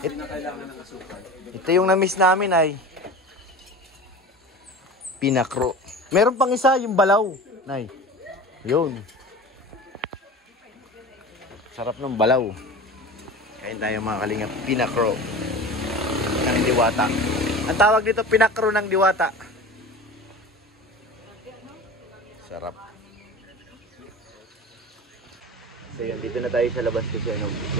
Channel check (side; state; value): both; normal; correlation 0.34